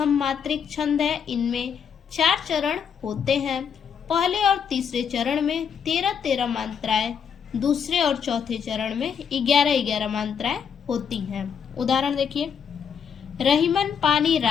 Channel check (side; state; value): right; quieter; 7.2 dB